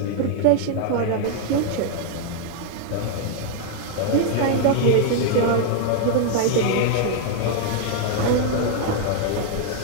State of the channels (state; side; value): different; both; correlation 0.00